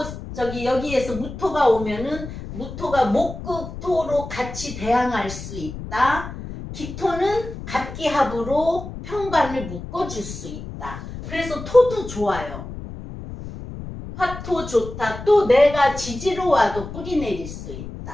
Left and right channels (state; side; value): noise; left; rumble, 10 dB below the sound